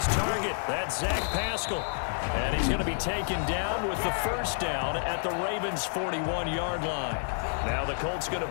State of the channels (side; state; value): right; silent; digital silence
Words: target. That's Zach Pascal. And he's going to be taken down with the first down at the Ravens' 41-yard line. Now the Colts going